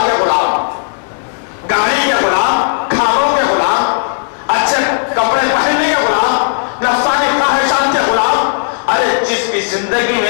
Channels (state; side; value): silent; right; digital silence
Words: کے غلام, گاڑی کے غلام, کھانوں کے غلام, اچھے کپڑے پہننے کے غلام, نفسانی خواہشات کے غلام. ارے جس کی زندگی